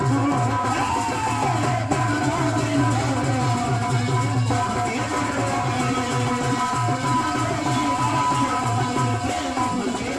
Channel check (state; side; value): identical; both; correlation 1.00